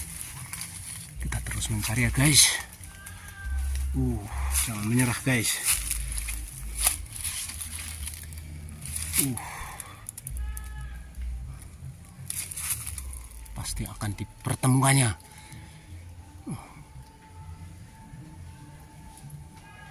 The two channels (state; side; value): identical; both; correlation 1.00